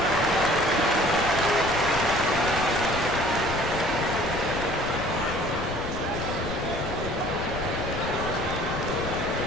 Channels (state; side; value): noise; left; rumble, 10 dB below the sound